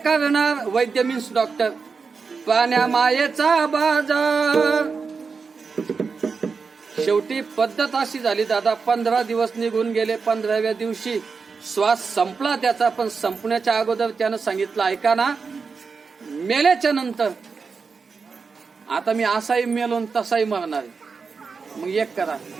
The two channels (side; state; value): left; quieter; 5.1 dB